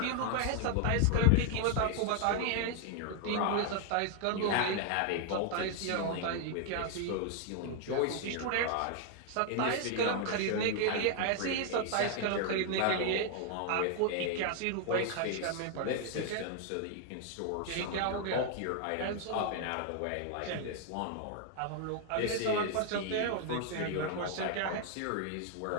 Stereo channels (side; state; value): both; different; correlation 0.00